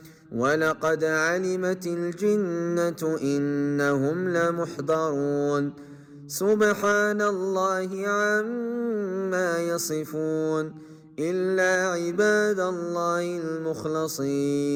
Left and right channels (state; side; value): identical; both; correlation 1.00